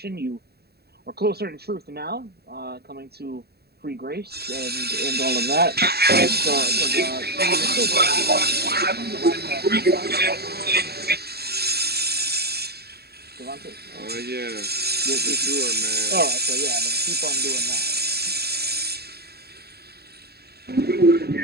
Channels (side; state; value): left; late; 0.47 ms